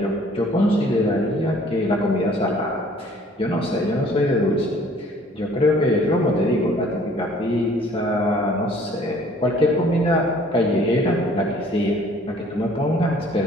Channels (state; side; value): normal; both; correlation 0.55